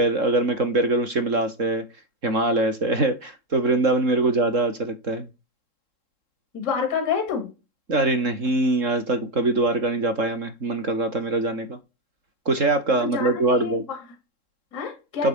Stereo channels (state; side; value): late; left; 3.7 ms